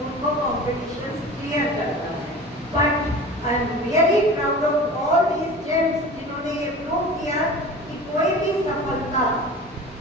उनको कॉम्पिटिशन क्लियर करना है. But I am really proud of all these gems जिन्होंने ये प्रूव किया कि कोई भी सफलता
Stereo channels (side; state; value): both; normal; correlation 0.37